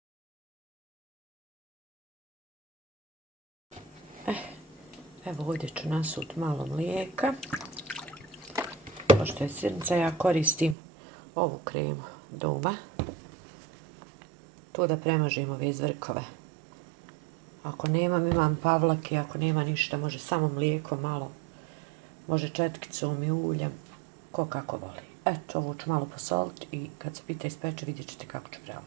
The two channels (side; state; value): left; drops out; at 10.8 s